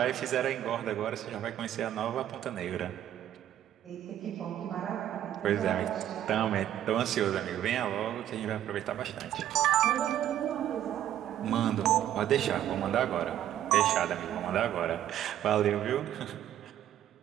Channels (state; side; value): quieter; left; 11.6 dB